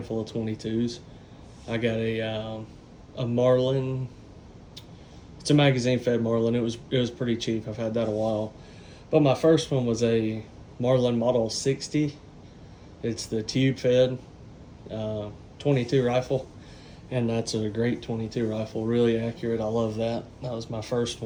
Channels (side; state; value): both; identical; correlation 1.00